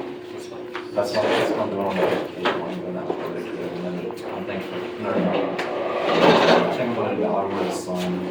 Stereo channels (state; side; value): identical; both; correlation 1.00